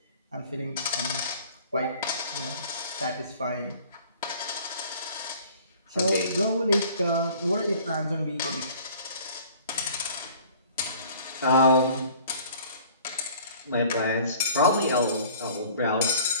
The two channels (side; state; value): both; inverted; correlation -0.51